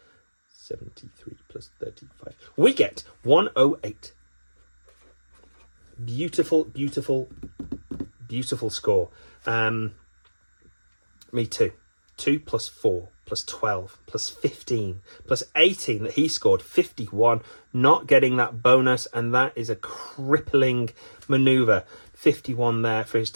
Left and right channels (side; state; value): both; inverted; correlation -1.00